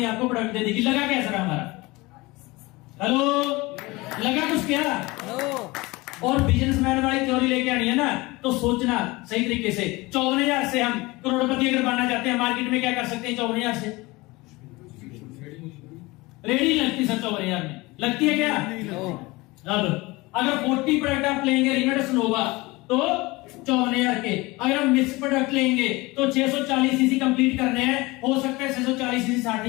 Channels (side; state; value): right; quieter; 22.4 dB